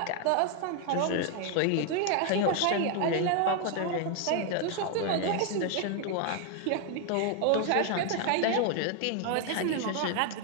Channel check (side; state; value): both; different; correlation 0.01